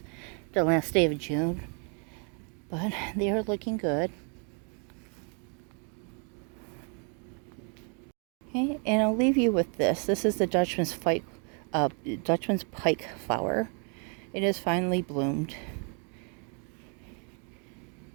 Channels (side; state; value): left; quieter; 38.8 dB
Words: the last day of June, but they are looking good. Okay, and I'll leave you with this. This is the Dutchman's pike flower. It has finally bloomed.